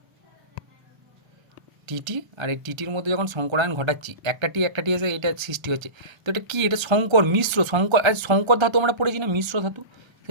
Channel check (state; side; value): late; left; 1.3 ms